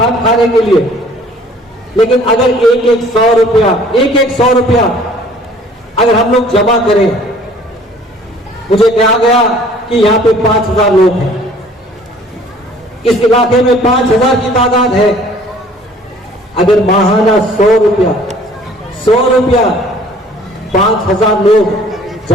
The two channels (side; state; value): both; normal; correlation 0.54